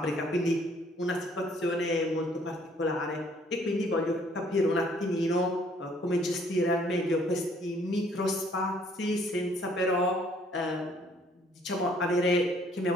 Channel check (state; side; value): normal; both; correlation 0.62